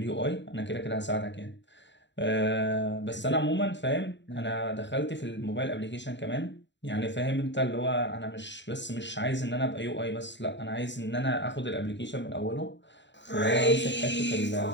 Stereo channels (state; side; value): late; right; 0.52 ms